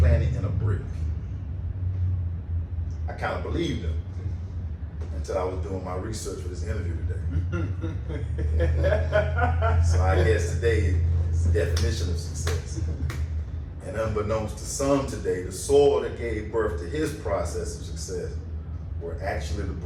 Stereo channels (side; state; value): both; identical; correlation 1.00